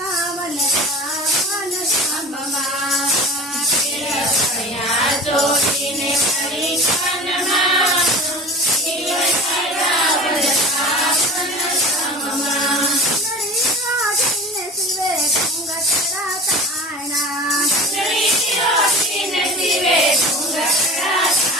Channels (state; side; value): normal; both; correlation 0.36